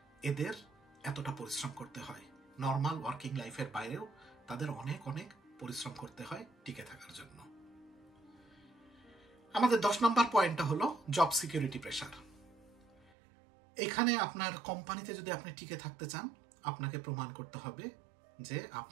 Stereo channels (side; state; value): left; drops out; at 13.1 s